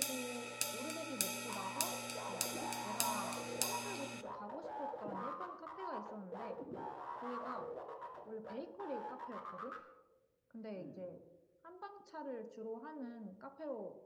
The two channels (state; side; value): identical; both; correlation 1.00